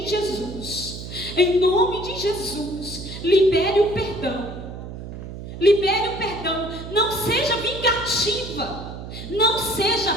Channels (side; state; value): right; noise; hum, 10 dB below the sound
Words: Jesus. Em nome de Jesus. Libere o perdão. Libere o perdão. Não seja vingativa. Não seja,